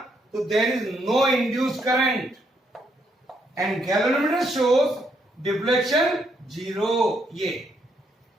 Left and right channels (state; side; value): normal; both; correlation 0.75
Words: so there is no induced current. And galvanometer shows deflection 0. ये.